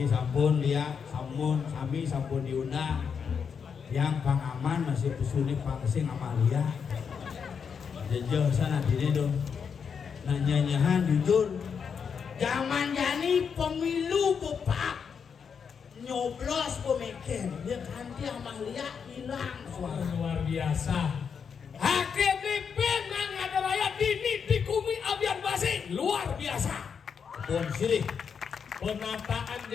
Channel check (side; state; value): right; quieter; 6.6 dB